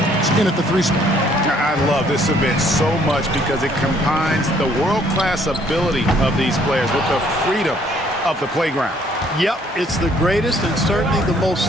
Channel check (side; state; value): both; normal; correlation 0.63